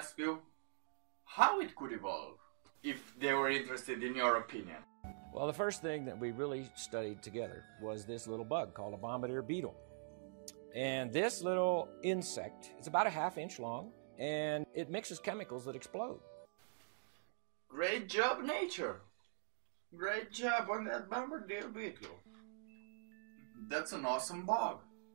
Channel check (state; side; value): silent; left; digital silence